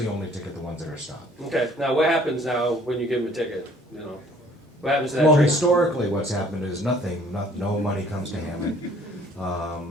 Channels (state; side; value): normal; both; correlation 0.57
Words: only ticket the ones that are stopped. Okay. Now, what happens now when you give them a ticket? What happens to that Well, train? historically, what's happened is nothing. No money comes to Hammond.